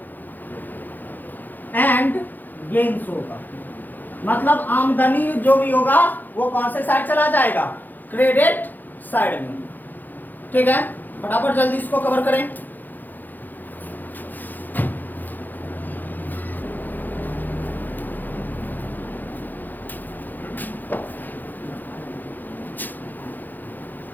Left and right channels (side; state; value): right; late; 0.086 ms